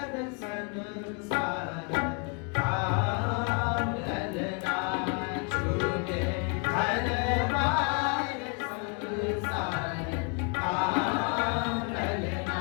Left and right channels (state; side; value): quieter; right; 34.2 dB